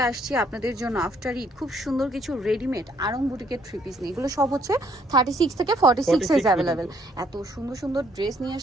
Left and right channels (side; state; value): both; normal; correlation 0.67